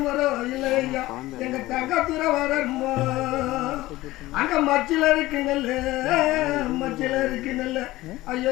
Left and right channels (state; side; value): quieter; right; 17.8 dB